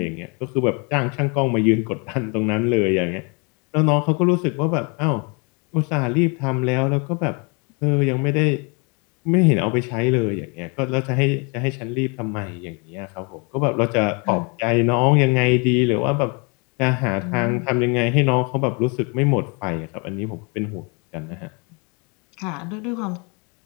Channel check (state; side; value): quieter; right; 32.9 dB